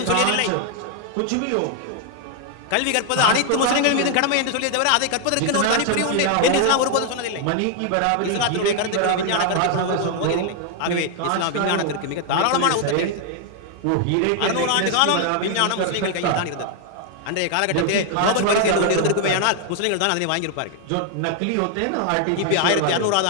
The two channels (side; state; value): both; different; correlation 0.00